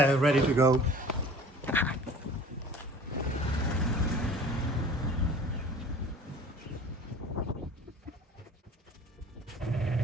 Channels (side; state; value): both; normal; correlation 0.45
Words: Ready to go.